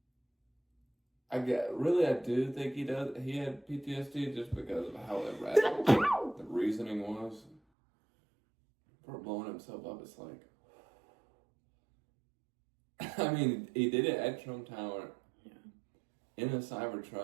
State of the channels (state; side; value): drops out; left; at 7.6 s